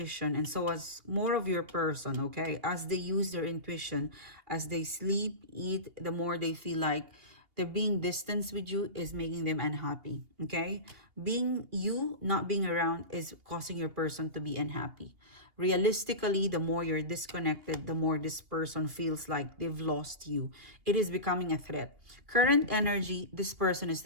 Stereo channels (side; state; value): left; late; 2.8 ms